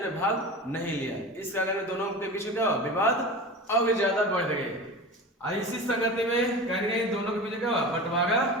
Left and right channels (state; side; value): normal; both; correlation 0.31